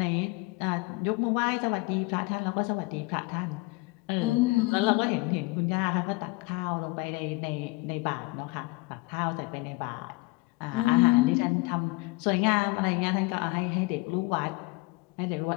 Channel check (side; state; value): right; quieter; 24.5 dB